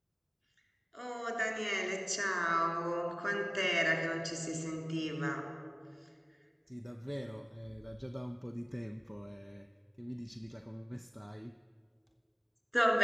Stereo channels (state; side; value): identical; both; correlation 1.00